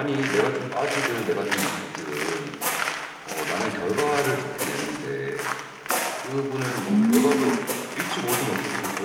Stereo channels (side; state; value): both; identical; correlation 1.00